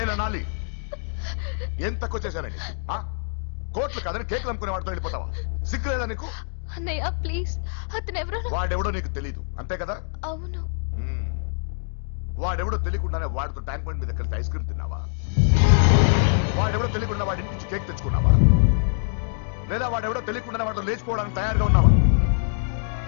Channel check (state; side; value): silent; right; digital silence